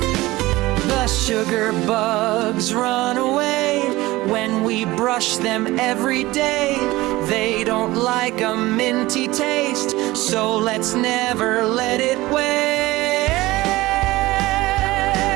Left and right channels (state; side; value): quieter; left; 19.1 dB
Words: The sugar bugs run away when we brush them every day. They don't like a minty taste, so let's never let it waste.